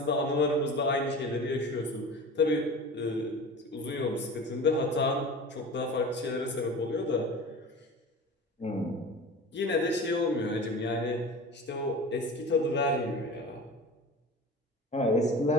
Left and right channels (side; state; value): both; normal; correlation 0.35